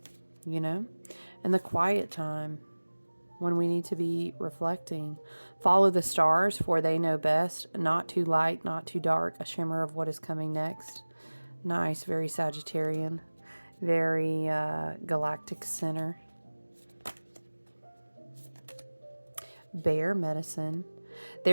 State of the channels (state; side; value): inverted; both; correlation -1.00